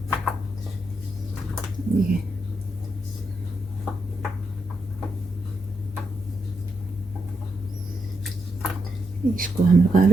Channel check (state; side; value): normal; both; correlation 0.82